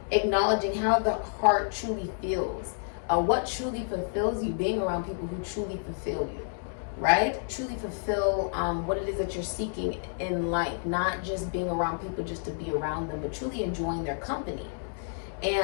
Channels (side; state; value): right; silent; digital silence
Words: acknowledging how the heart truly feels. What truly fulfills you, being around people who truly fulfill you, right? Truly fulfill what it is that you're seeking in life. Not just being around people just to be around them, but truly enjoying their company.